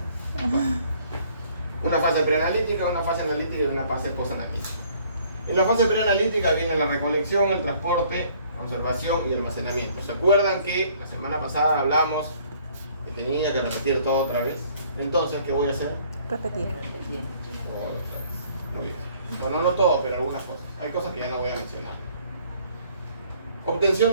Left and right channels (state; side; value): inverted; both; correlation -0.59